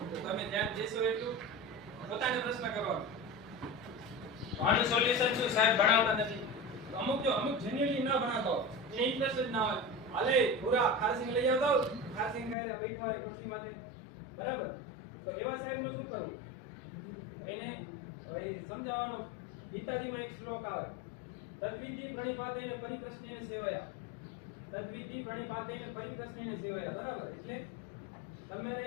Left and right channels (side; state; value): right; drops out; at 12.6 s